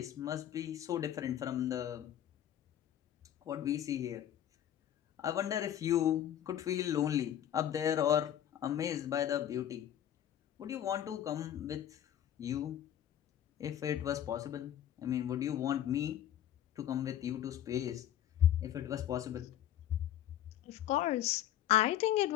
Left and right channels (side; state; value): right; quieter; 11.2 dB